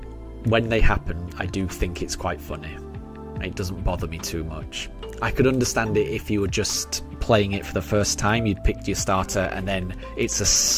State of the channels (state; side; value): identical; both; correlation 1.00